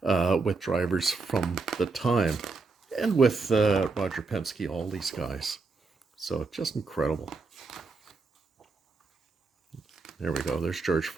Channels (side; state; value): left; quieter; 4.2 dB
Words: with drivers from the time and with Roger Penske, all these guys. So just incredible. There we go. There's George